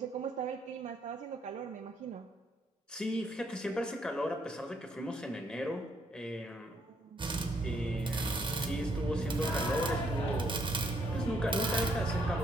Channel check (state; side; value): normal; both; correlation 0.71